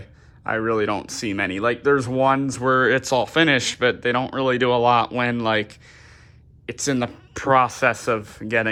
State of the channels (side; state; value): both; identical; correlation 1.00